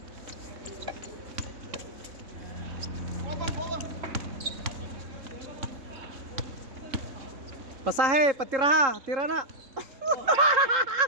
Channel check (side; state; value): left; late; 3.8 ms